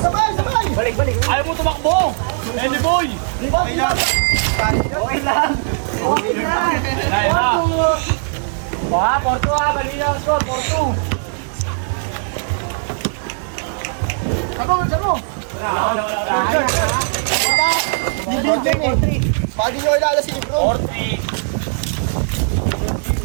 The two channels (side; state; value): left; silent; digital silence